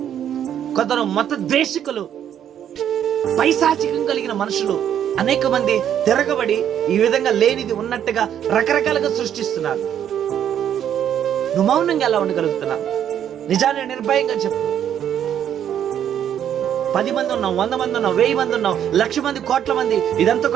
కొందరు మత ద్వేషికులు, పైశాచికం కలిగిన మనుషులు అనేక మంది తిరగబడి ఈ విధంగా లేనిది ఉన్నట్టుగా రకరకాలుగా సృష్టిస్తున్నారు. నువ్వు మౌనంగా ఎలా ఉండగలుగుతున్నావు? నిజాన్ని నిర్భయంగా చెప్పు. 10 మంది ఉన్నాం, 100 మంది ఉన్నాం, 1000 మంది ఉన్నాం, 1,00,000 మంది, కోట్ల మంది, ఇదంతా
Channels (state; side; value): quieter; left; 9.8 dB